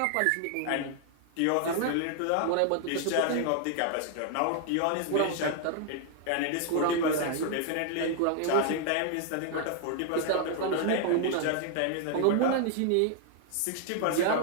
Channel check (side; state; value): both; different; correlation 0.00